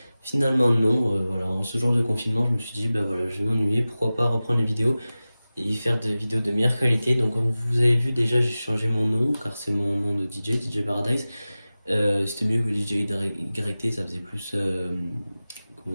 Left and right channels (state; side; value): inverted; both; correlation -0.96